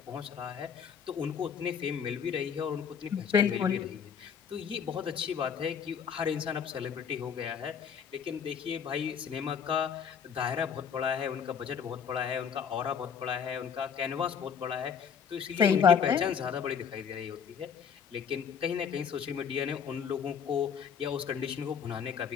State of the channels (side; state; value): right; quieter; 7.2 dB